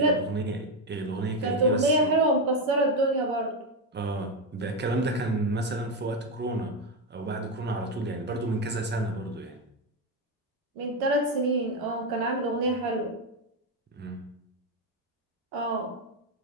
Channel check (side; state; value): both; normal; correlation 0.08